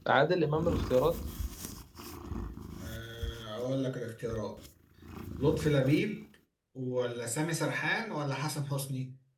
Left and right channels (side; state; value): both; identical; correlation 1.00